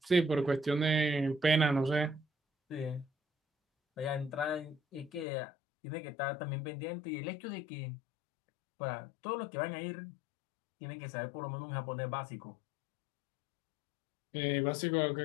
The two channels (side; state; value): right; drops out; at 5.2 s